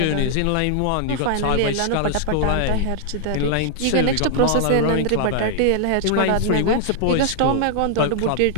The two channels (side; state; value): both; different; correlation -0.01